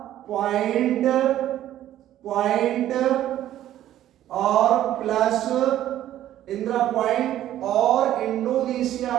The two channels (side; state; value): left; quieter; 12.5 dB